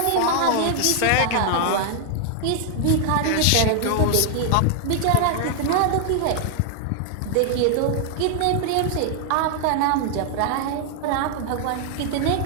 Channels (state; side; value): different; both; correlation 0.00